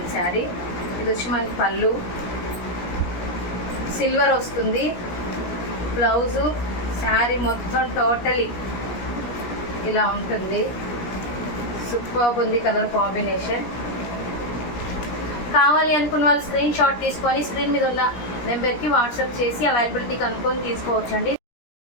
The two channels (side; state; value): right; late; 17 ms